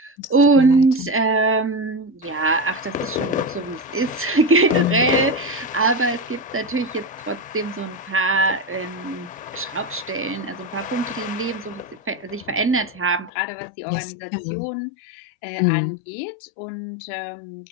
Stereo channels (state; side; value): drops out; right; at 13.3 s